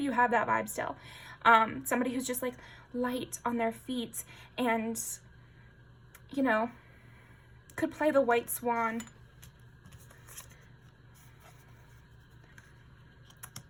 have that vibe still. Somebody who's just like light on their feet and, you know, could play the white swan.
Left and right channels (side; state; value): both; identical; correlation 1.00